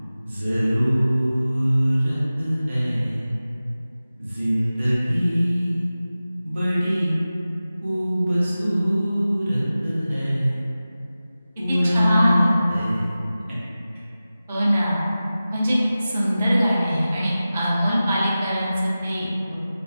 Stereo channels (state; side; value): inverted; both; correlation -0.96